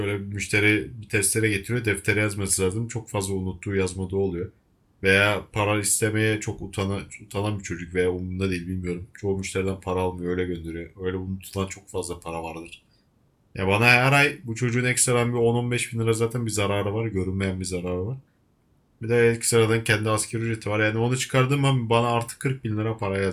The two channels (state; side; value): identical; both; correlation 1.00